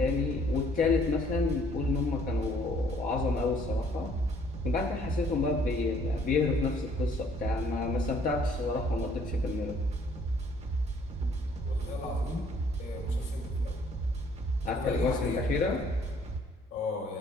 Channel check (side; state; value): both; normal; correlation 0.61